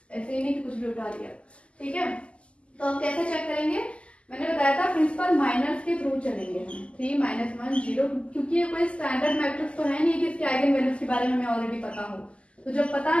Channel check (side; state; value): right; late; 0.056 ms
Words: ऐसे ही नहीं कि कुछ भी उठा लिया, ठीक है। तो हम कैसे चेक करेंगे, मैंने बताया था प्रिंसिपल माइनर्स के थ्रू चलेंगे हम। 3 -1 0, क्योंकि ये कोई स्टैंडर्ड मैट्रिक्स तो है नहीं कि इसके आइगन वैल्यूज के बारे में हमें ऑलरेडी पता हो। तो जब पता